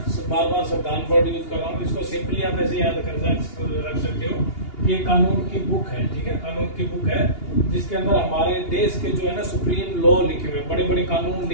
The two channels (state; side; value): late; right; 2.8 ms